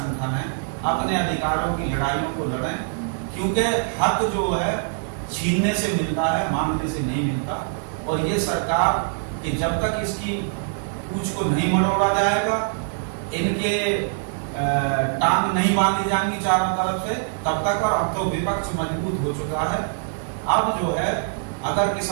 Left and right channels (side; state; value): left; silent; digital silence